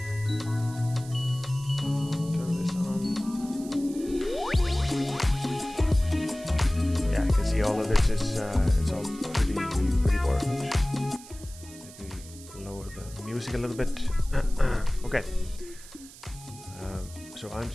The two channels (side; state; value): right; noise; hiss, 18 dB below the sound